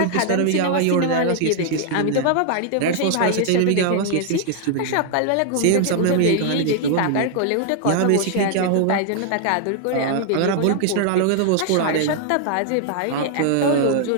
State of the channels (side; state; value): both; different; correlation 0.00